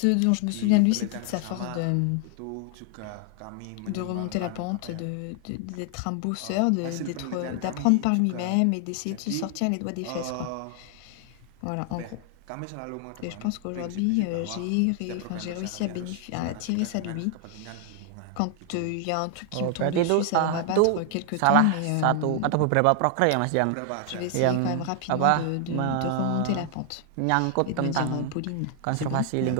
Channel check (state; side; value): different; both; correlation 0.00